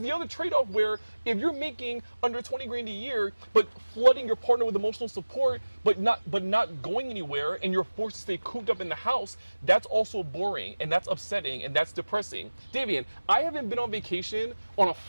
other trade-off where if you're making under $20,000 a year, but flooding your partner with emotional support, but not going anywhere, and you're forced to stay cooped up in the house, that's also boring, and that's upsetting, and that's depressing. Davian, I haven't been on vacation on a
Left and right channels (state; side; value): inverted; both; correlation -1.00